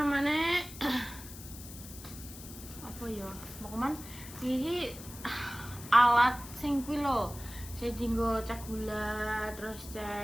apa ya? Mau kemana? Ini alat sing kuwi lho. Saya dinggo cek gula, terus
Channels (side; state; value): left; noise; hiss, 14 dB below the sound